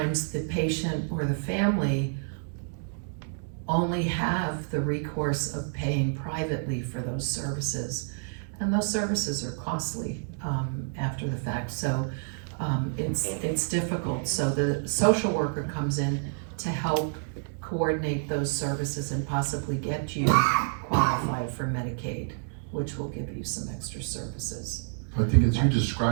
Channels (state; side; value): silent; left; 59 dB below the other